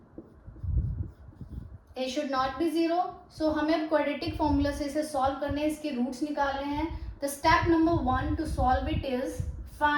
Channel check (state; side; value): identical; both; correlation 1.00